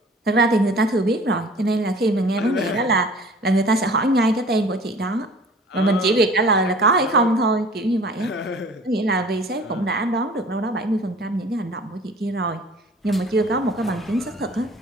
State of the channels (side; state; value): both; normal; correlation 0.48